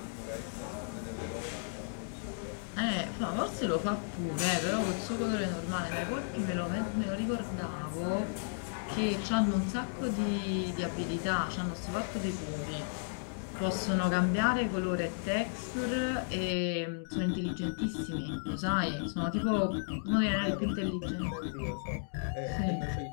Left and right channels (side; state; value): right; silent; digital silence